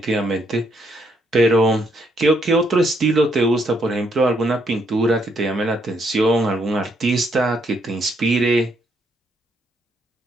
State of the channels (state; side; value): normal; both; correlation 0.73